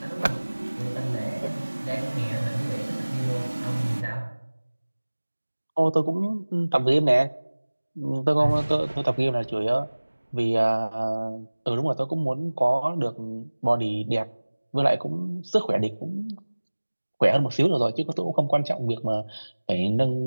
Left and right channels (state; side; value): inverted; both; correlation -1.00